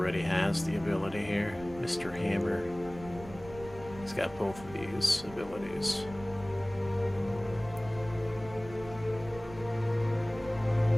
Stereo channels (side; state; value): right; noise; rumble, 16 dB below the sound